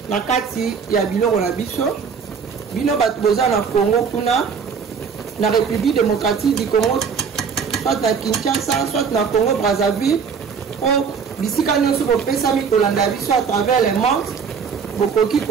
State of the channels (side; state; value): left; quieter; 6.2 dB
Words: na kati ya biloko na biso bino bato boza na Congo kuna na République démocratique du Congo soit na Kinshasa soit na Congo Brazzaville o bisika nyonso bopesami kolanda biso à travers les mondes bokoki